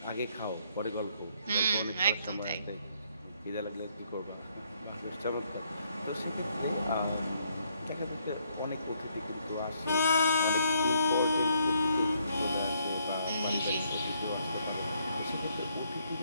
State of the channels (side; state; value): both; inverted; correlation -0.71